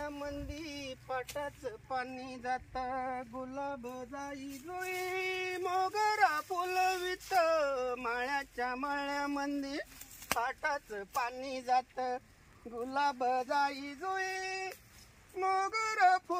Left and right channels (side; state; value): both; identical; correlation 1.00